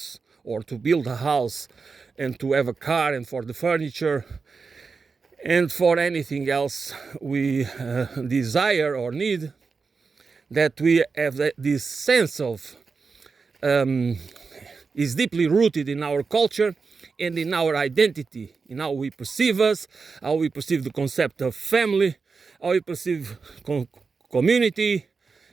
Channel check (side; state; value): left; quieter; 4.8 dB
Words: or to build a house and to have a car and for the furniture and for anything else we desire or need, that we have this sense of is deeply rooted in our culture and in our identity, in how we perceive us, how we perceive the concept of family, how we perceive community,